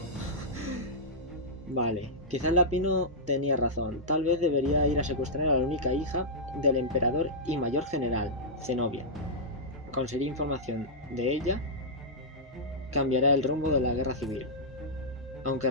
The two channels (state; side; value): normal; both; correlation -0.11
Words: Vale, quizás Lapino tenía razón. Tal vez debería ir a secuestrar a la única hija del emperador y mayor general, Zenobia. Conseguir información de ella cambiará el rumbo de la guerra civil. Aunque